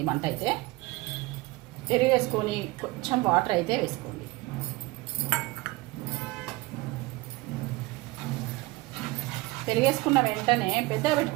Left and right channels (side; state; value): left; quieter; 21.5 dB